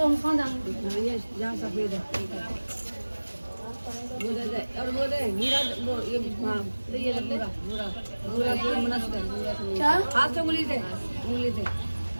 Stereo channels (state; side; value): inverted; both; correlation -1.00